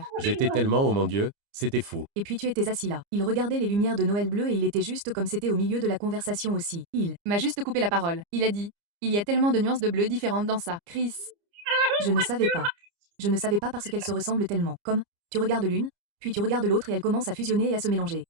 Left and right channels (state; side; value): late; left; 29 ms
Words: J'étais tellement, oh mon Dieu, c'était fou. Et puis tu étais assis là. Il regardait les lumières de Noël bleu et il était juste comme c'était au milieu de la conversation aussi. Il. M'a juste coupé la parole. Il a dit, il y a tellement de nuances de bleu différentes dans ça. Chris. Je ne savais pas. Je ne savais pas parce qu'elles se ressemblent tellement. Comme, tu regardes l'une, puis tu regardes l'autre et elles commencent à fusionner et à se mélanger.